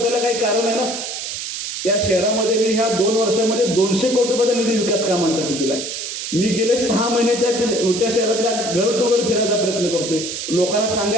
त्याला काही कारण आहे ना. त्या शहरामध्ये मी ह्या 2 वर्षामध्ये 200 कोटी रुपयाचा निधी विकास कामांसाठी दिलाय. मी गेले 6 महिने त्या शहरातल्या घर टू घर फिरायचा प्रयत्न करतोय, लोकांना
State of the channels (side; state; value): right; noise; hiss, 6 dB below the sound